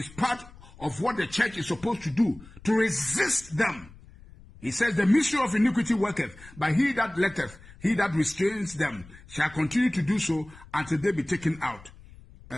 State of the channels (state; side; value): noise; left; rumble, 21 dB below the sound